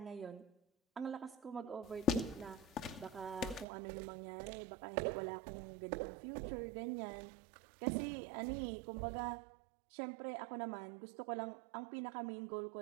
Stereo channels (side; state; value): left; drops out; at 3.7 s